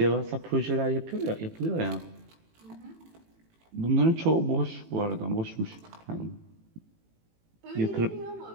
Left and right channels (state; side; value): late; left; 18 ms